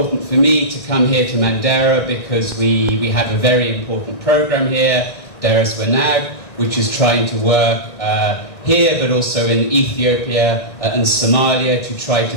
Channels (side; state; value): right; late; 1.7 ms